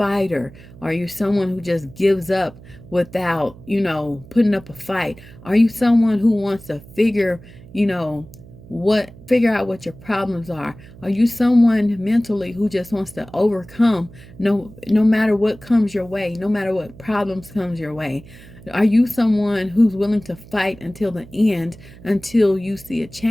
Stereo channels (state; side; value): noise; right; hum, 20 dB below the sound